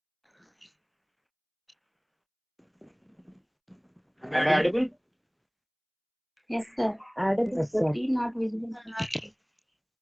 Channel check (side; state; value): both; identical; correlation 1.00